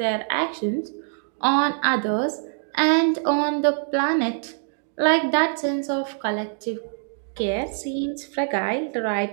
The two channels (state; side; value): silent; left; digital silence